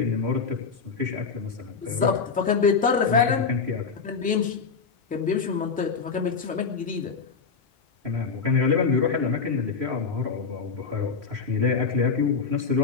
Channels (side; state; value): right; quieter; 5.3 dB